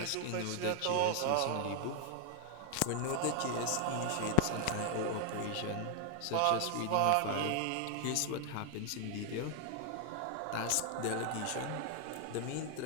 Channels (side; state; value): both; different; correlation 0.00